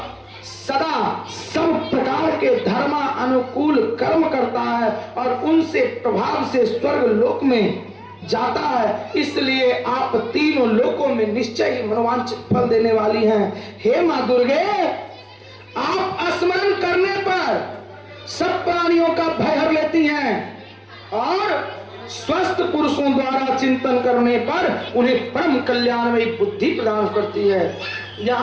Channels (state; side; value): identical; both; correlation 1.00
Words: सदा सब प्रकार के धर्मा अनुकूल कर्म करता है और उनसे प्रभाव से स्वर्ग लोक में जाता है। इसलिए आप तीनों लोकों में निश्चय ही मनोवांछित फल देने वाली हैं। हे मां दुर्गे, आप स्मरण करने पर सब प्राणियों का भय हर लेती हैं और स्वस्थ पुरुषों द्वारा चिंतन करने पर उन्हें परम कल्याणमयी बुद्धि प्रदान करती है।